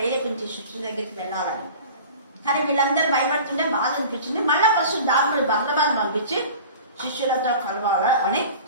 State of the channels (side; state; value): both; inverted; correlation -0.40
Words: శిష్యుల దగ్గరికి వెళ్ళాలని, కానీ వీళ్ళందరూ భయపడుతుంటే బాధ అనిపించింది. మళ్ళా ఫస్ట్ దాని బర్నబాను పంపించి శిష్యులతో కలవాలా అని